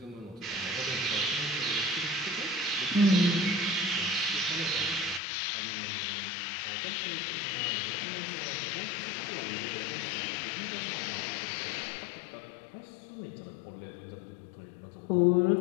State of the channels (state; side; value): drops out; right; at 5.2 s